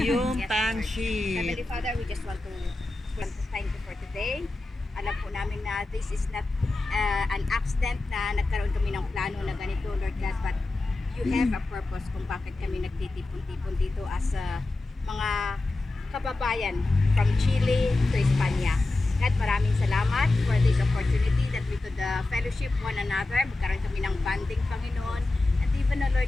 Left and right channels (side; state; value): right; quieter; 3.0 dB